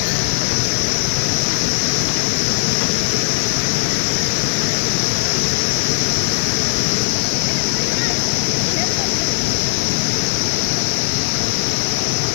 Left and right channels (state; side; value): silent; right; 65 dB below the other